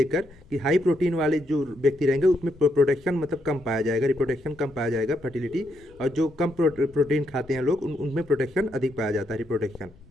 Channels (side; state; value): left; noise; rumble, 26 dB below the sound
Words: कि हाई प्रोटीन वाले जो व्यक्ति रहेंगे उसमें प्रोटेक्शन मतलब कम पाया जाएगा, रिप्रोडक्शन कम पाया जाएगा, फर्टिलिटी, और जो कम प्रोटीन खाते हैं लोग उनमें प्रोटेक्शन अधिक पाया जाता है, रिप्रोडक्शन।